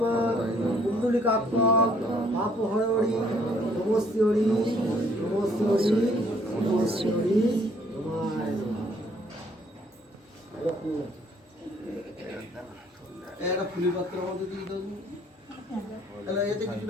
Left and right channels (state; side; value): normal; both; correlation 0.63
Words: कुंडलिकाक्ष पापहरि नमस्तेरि नमस्तेरि नमस्तेरि একটা ফুলি পাত্রের মধ্যে দিয়ে দাও, তাহলে এতে